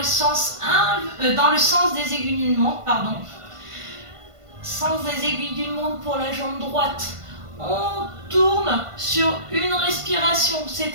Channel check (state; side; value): late; left; 1.5 ms